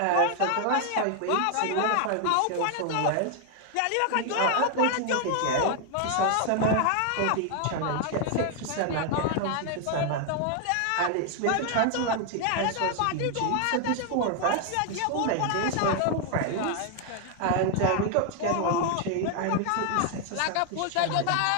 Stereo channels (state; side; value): different; both; correlation 0.00